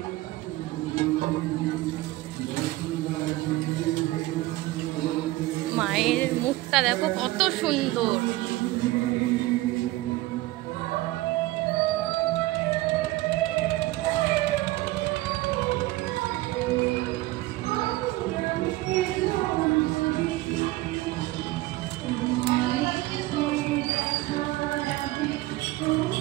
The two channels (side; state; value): left; quieter; 18.5 dB